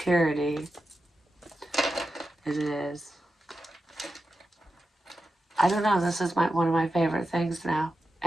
It is. I don't know, this is one of my favorite things now.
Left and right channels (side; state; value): both; normal; correlation 0.90